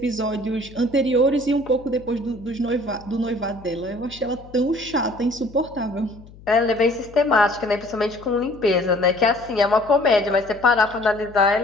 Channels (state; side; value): noise; left; hum, 21 dB below the sound